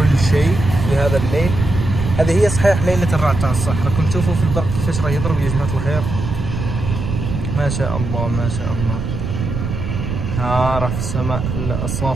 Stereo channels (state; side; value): noise; right; rumble, 4 dB below the sound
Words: شيء في هذا الليل. هذه هي صحيح ليلة الرعد تاع الصح. راكم تشوفوا في البرق كيفاش راه يضرب يا جماعة الخير، ما شاء الله ما شاء الله. ها راه في السماء